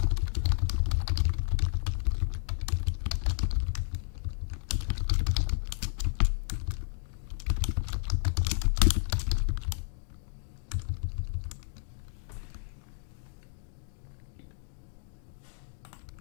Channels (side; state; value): right; silent; digital silence